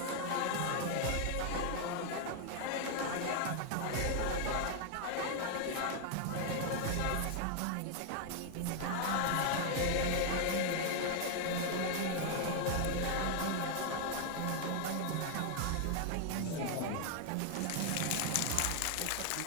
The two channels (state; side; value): different; both; correlation 0.00